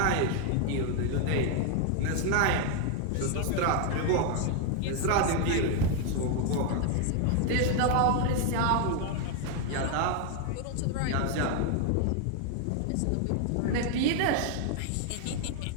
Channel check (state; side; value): different; both; correlation 0.00